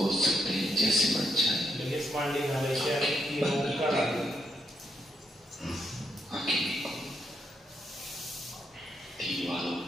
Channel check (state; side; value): normal; both; correlation 0.78